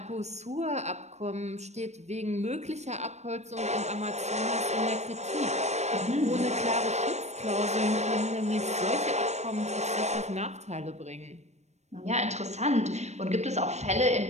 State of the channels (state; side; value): late; left; 0.32 ms